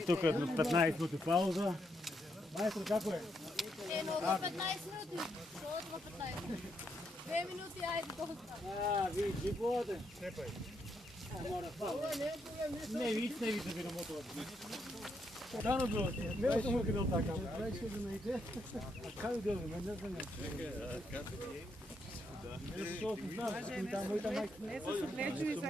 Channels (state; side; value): normal; both; correlation 0.78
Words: тук 15 минути пауза. Майстор, како е? Eno, do 15 minuti. Što do 15? 2 minuti, ajde, dosta. Ви воде. Степај. Мора пауза. Не види да ви намотуват. Дано било. Не съм му къдел така. Дай ще да найде. А как да го не знам. Не со знам, там мојта мајка. Не се согледува за